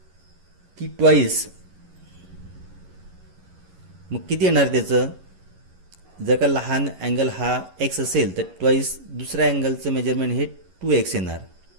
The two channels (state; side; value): late; left; 11 ms